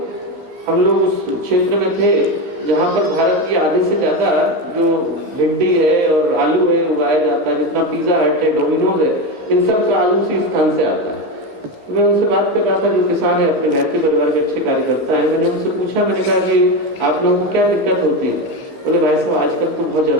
हम लोग उस क्षेत्र में थे जहाँ पर भारत की आधे से ज्यादा जो भिंडी है और आलू है उगाया जाता है। जितना पिज्जा हट है, डोमिनोज है, इन सब का आलू उसी स्थान से आता है। तो मैं उनसे बात कर रहा था, जो किसान है, अपने घर के परिवार के अच्छे कार्यकर्ता है। मैंने उनसे पूछा, मैंने कहा कि आप लोगों को क्या दिक्कत होती है? बोले भाई साहब आजकल तो बहुत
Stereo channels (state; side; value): late; left; 15 ms